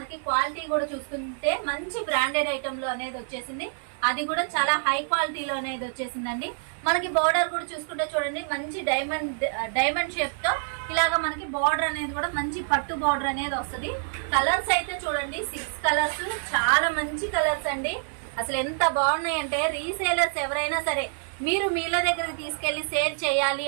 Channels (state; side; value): silent; left; digital silence